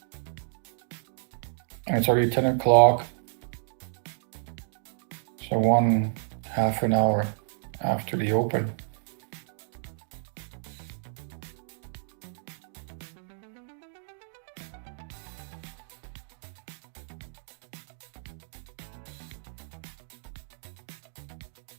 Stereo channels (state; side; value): silent; left; digital silence